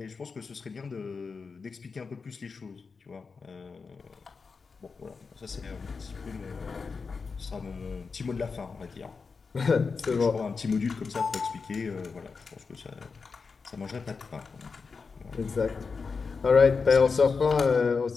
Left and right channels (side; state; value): right; quieter; 4.9 dB